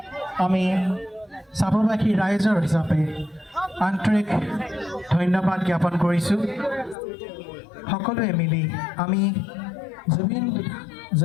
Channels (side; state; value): right; drops out; at 7.0 s